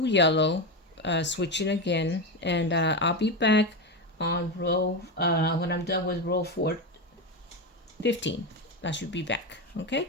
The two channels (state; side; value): normal; both; correlation 0.15